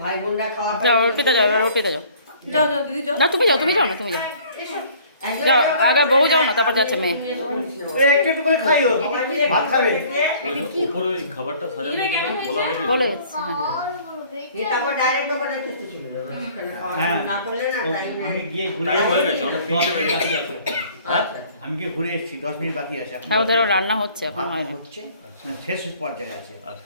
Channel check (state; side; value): inverted; both; correlation -0.54